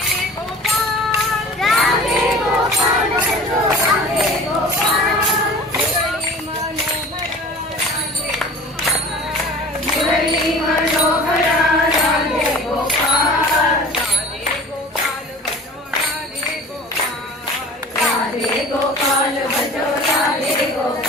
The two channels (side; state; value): both; normal; correlation 0.42